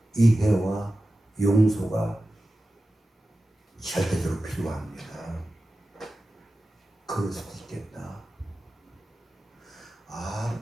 이해와 용서가 절대적으로 필요합니다. 그럴 수도 있겠다.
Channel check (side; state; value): both; normal; correlation 0.94